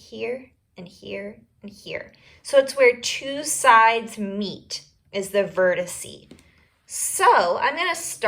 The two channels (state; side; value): identical; both; correlation 1.00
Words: and here and here. So it's where two sides meet is the vertice. So I'm going to